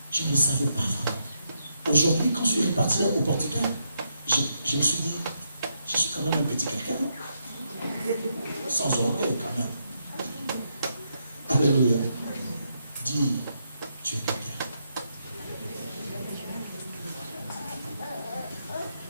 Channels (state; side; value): inverted; both; correlation -0.80